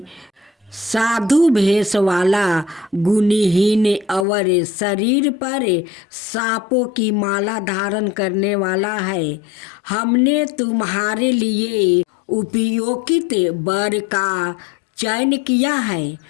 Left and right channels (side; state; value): right; drops out; at 4.2 s